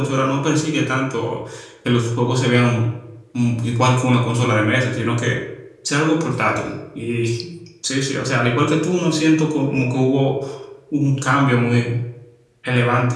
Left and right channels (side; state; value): both; identical; correlation 1.00